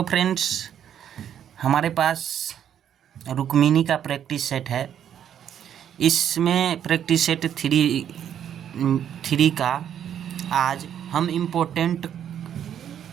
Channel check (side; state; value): left; quieter; 9.5 dB